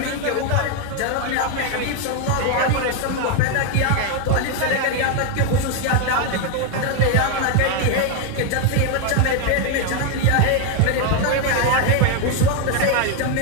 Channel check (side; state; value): both; different; correlation 0.01